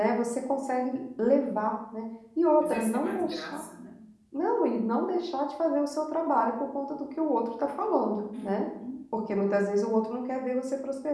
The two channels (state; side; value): identical; both; correlation 1.00